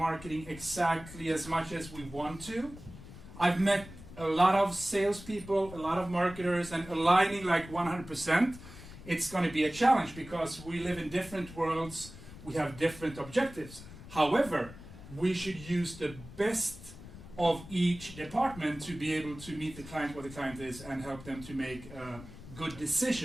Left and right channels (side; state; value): left; noise; rumble, 15 dB below the sound